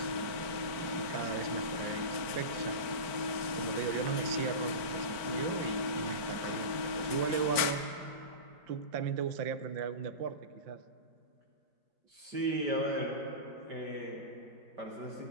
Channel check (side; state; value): left; late; 4.5 ms